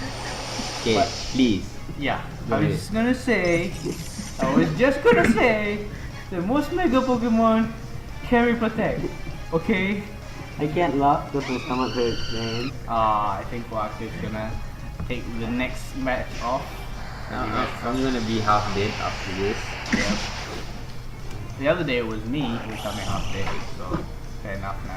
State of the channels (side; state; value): both; identical; correlation 1.00